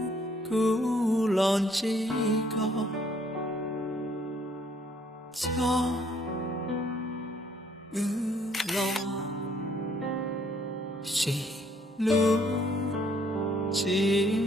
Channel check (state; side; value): normal; both; correlation 0.65